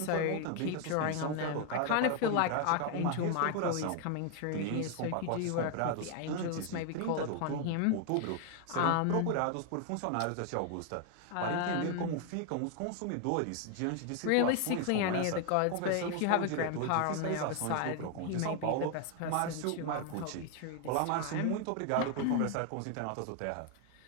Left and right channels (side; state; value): both; different; correlation 0.00